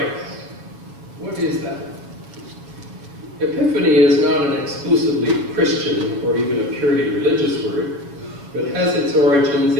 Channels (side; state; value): left; late; 7.3 ms